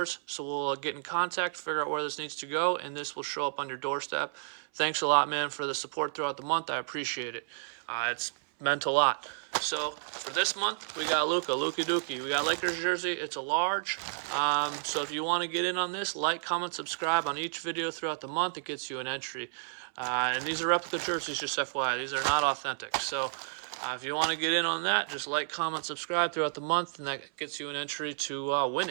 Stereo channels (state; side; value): silent; left; 57 dB below the other